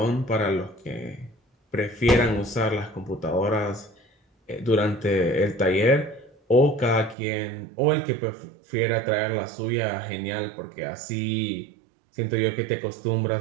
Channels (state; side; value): drops out; left; at 7.2 s